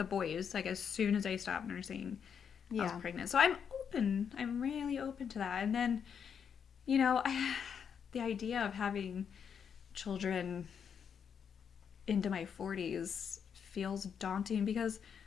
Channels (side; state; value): right; quieter; 7.3 dB